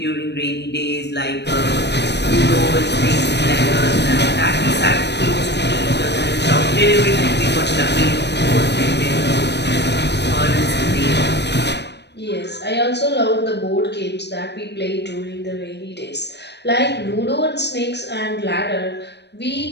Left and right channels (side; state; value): right; late; 0.50 ms